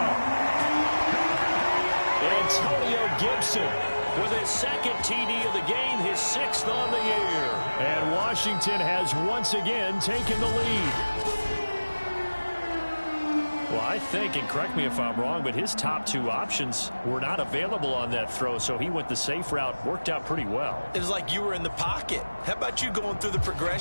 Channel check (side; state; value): both; inverted; correlation -1.00